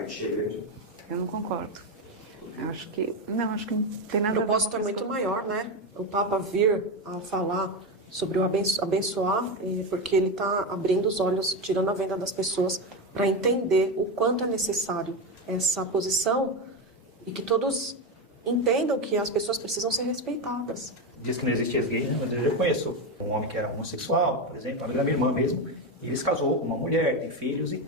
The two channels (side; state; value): both; normal; correlation 0.14